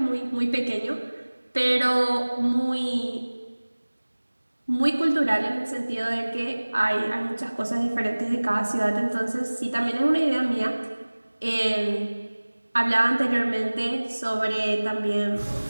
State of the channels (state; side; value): inverted; both; correlation -1.00